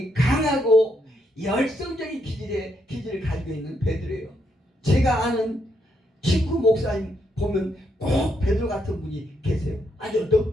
강하고 열성적인 기질을 가지고 있는 베드로예요. 제가 아는 친구 목사님 보면 꼭 베드로 같은 분이 계세요. 아주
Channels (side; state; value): both; normal; correlation 0.77